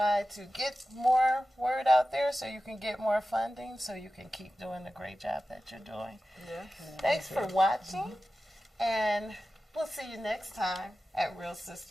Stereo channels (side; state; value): both; normal; correlation 0.94